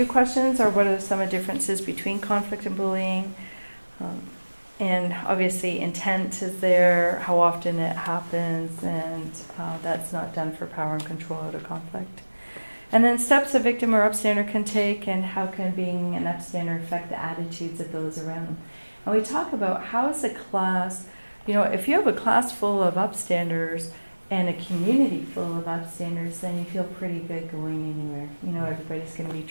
questions are, what are some of the differences between conflict and bullying? And obviously intent is there, how often it happens, and that's not done for power and control out of conflict. And then steps a victim or upstander can take, and how can being an upstander affect the attitudes of those around them. And we talk about how is a class, you know, if you have a class full of upstanders and a community full of upstanders, then you feel pretty good going anywhere. You know, everybody's going to be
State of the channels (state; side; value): inverted; both; correlation -1.00